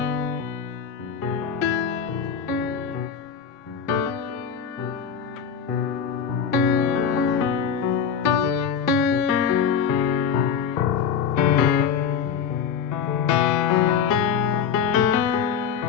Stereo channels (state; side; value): quieter; right; 7.2 dB